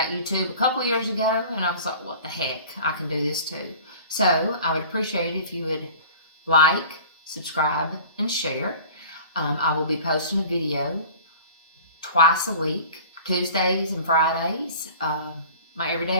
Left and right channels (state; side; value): inverted; both; correlation -0.43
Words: YouTube a couple years ago, and I was like, what the heck, I can do this too. So I would appreciate it if you would like, subscribe, and share. I will be posting a video twice a week, Tuesdays and Fridays, my